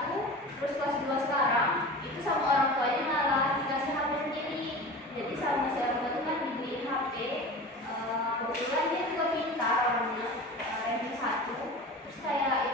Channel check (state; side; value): normal; both; correlation 0.34